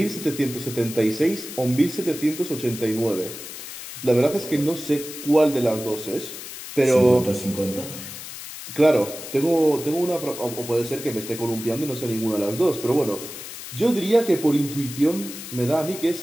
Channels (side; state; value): left; noise; hiss, 11 dB below the sound